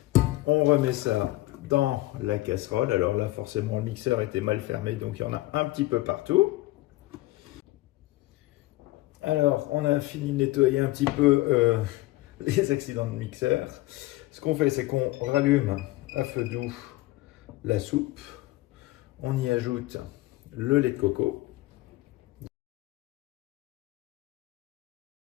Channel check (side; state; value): right; quieter; 18.9 dB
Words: on remet ça dans la casserole. Alors là, forcément, le mixeur était mal fermé, donc il y en a un petit peu partout. Alors, on a fini de nettoyer un petit peu les accidents de mixeur. Ce qu'on fait, c'est qu'on rallume à feu doux la soupe. On y ajoute le lait de coco.